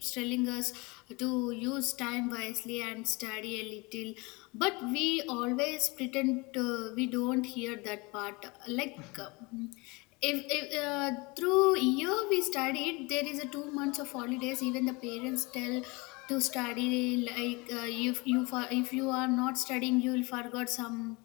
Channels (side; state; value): right; quieter; 26.2 dB